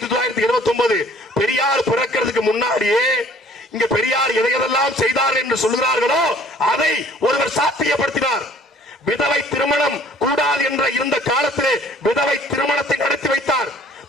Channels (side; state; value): both; normal; correlation 0.54